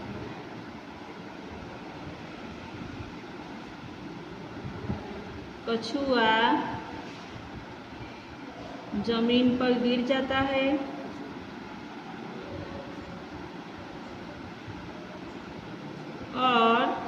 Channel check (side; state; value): both; identical; correlation 1.00